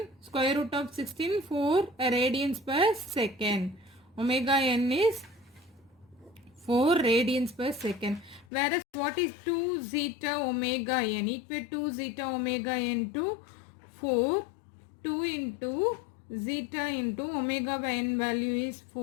square root of 16, 4 radians per second. Omega n is 4 radians per second. Whereas what is 2 zeta omega n? Equate 2 zeta omega n to 4. 2 into zeta into omega by n value is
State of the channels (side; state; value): right; drops out; at 8.5 s